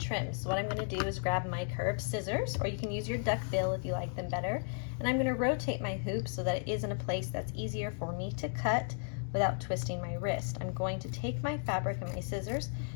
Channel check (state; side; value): silent; right; digital silence